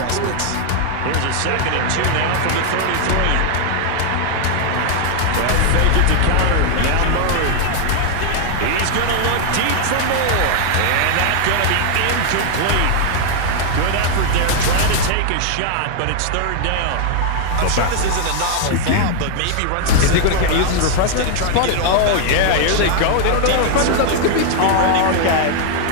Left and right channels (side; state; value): both; different; correlation 0.00